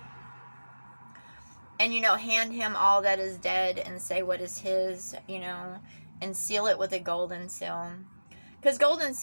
And, hand him all that is dead and say what is his, and seal it with a golden seal. Because golden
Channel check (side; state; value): both; inverted; correlation -1.00